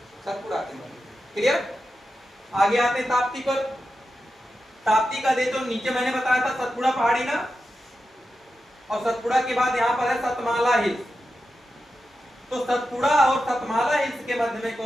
सतपुड़ा के मध्य। क्लियर? आगे आते ताप्ती पर। ताप्ती का दे तो नीचे मैंने बताया था सतपुड़ा पहाड़ी ना, और सतपुड़ा के बाद यहाँ पर है सतमाला हिल्स। तो सतपुड़ा और सतमाला हिल्स के मध्य में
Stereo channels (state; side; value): normal; both; correlation 0.90